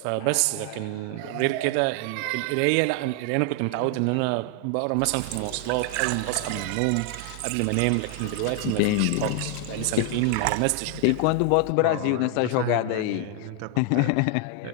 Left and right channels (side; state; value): both; different; correlation 0.00